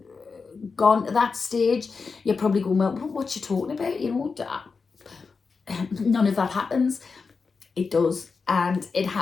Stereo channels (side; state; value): right; quieter; 4.8 dB